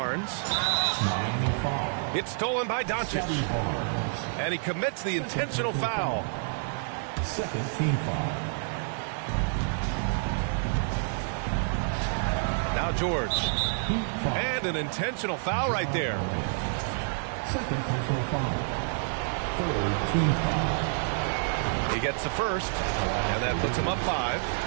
It's stolen by Doncic. And he commits the intentional foul. Second team foul. Now George. And an intentional foul right there. Second personal foul. Third team foul. He gets the first, and that puts him up 5.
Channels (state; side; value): silent; left; digital silence